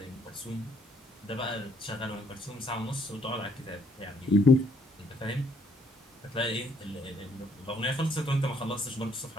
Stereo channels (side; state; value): both; normal; correlation 0.67